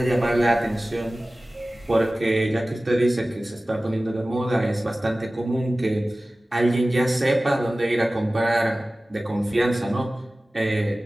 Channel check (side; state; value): both; normal; correlation 0.97